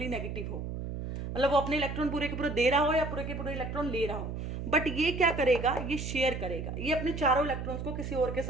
नेगेटिव हो, मतलब वो अपने इलेक्ट्रॉन पूरे के पूरे दे रहा हो या पूरे के पूरे इलेक्ट्रॉन ले रहा हो। बट ये क्या करेगा, ये शेयर करेगा, ये अपने चारों इलेक्ट्रॉन्स को किसी और के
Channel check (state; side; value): noise; right; hum, 5 dB below the sound